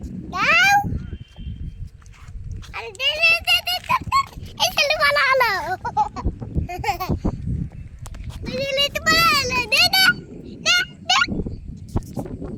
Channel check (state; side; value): identical; both; correlation 1.00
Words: দাও আরে দে দে দে দে এই চলো ভালো হলো এই লেট ভালো হলো দে দে দে দে